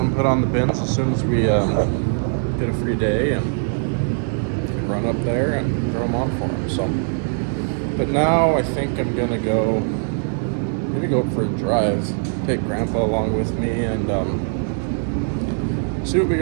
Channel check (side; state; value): left; silent; 59 dB below the other